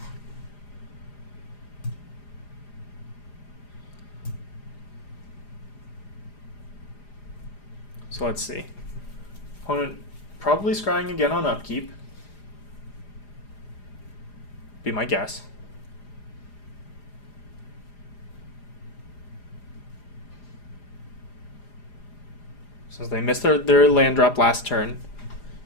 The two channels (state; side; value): late; right; 4.9 ms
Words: So let's see. Opponent probably scrying again on upkeep. Be my guess. Since they missed their land drop last turn,